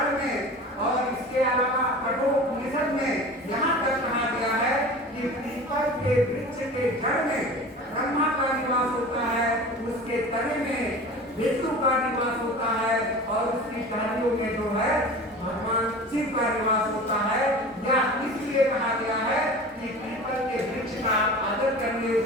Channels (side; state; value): both; normal; correlation 0.36